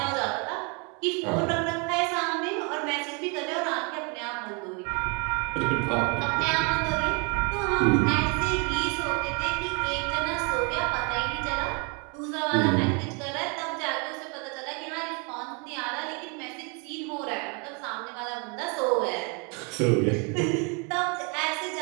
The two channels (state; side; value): quieter; left; 33.6 dB